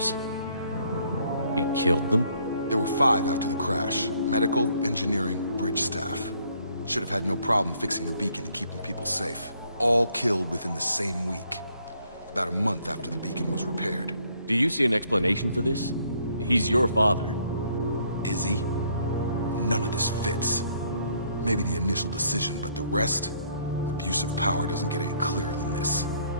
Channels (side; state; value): both; inverted; correlation -0.66